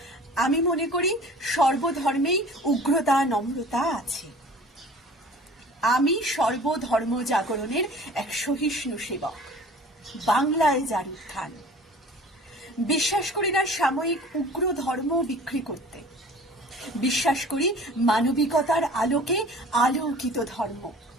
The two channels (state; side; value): normal; both; correlation 0.46